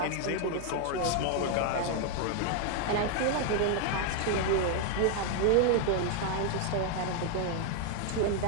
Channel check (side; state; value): both; different; correlation 0.00